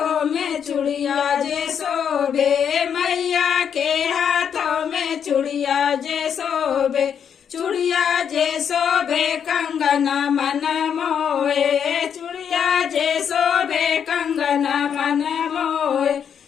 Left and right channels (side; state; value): right; quieter; 7.9 dB